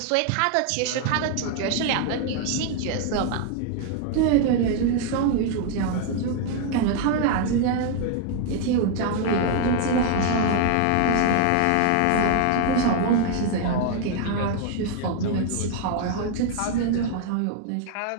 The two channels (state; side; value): different; both; correlation 0.00